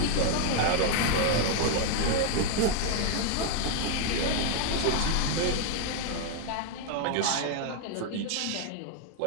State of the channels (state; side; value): different; both; correlation 0.01